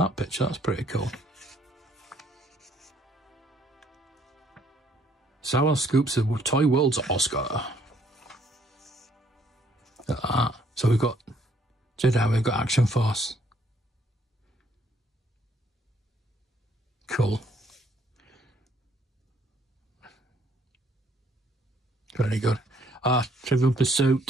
picture, that's pretty cool. Star Wars scoops the Toy World's Oscar. Look at that. So we've got Jedi, we've got Action Force. Cool. Very good. Trivial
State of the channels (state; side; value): normal; both; correlation 0.65